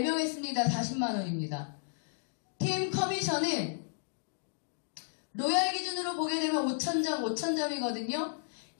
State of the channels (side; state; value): right; silent; digital silence